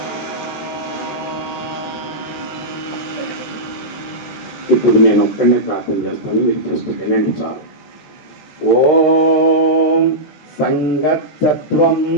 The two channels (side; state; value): right; late; 14 ms